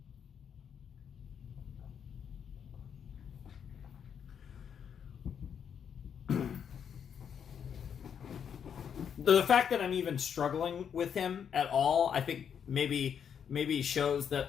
the fact that I'm even struggling with him at all, I think maybe shows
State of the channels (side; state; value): right; quieter; 7.9 dB